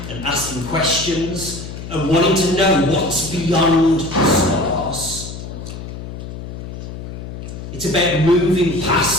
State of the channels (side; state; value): left; noise; hum, 10 dB below the sound